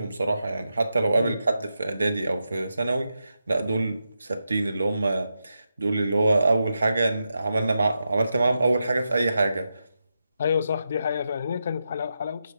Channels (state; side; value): inverted; both; correlation -0.87